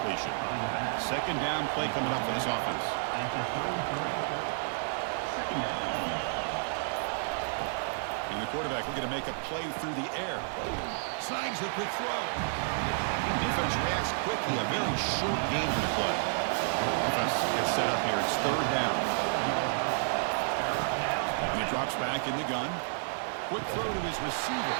Second down play coming up for this offense. And the quarterback looking to make a play through the air. Snags the quick throw. Defense reacts quickly. A very short gain on the play. Offense gets set up here. It's third down. And he drops back in the gun. Quick throw to his receiver.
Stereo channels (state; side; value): silent; left; digital silence